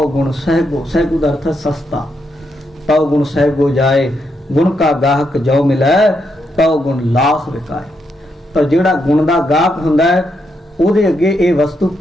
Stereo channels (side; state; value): both; normal; correlation 0.80